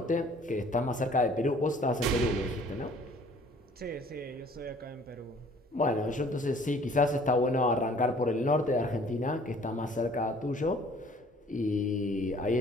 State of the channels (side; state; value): both; normal; correlation 0.54